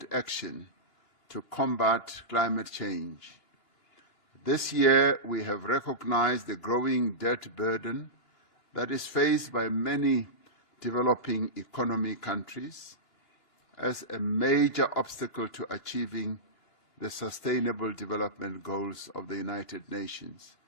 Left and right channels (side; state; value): left; late; 1.5 ms